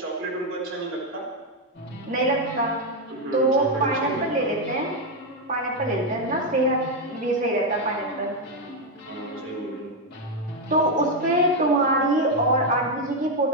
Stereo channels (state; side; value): normal; both; correlation 0.04